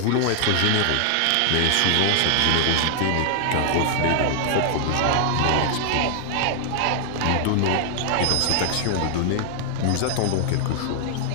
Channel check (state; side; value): different; both; correlation 0.00